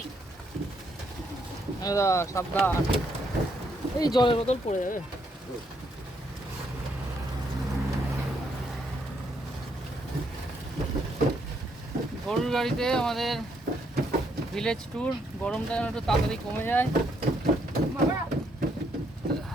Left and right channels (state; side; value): normal; both; correlation 0.74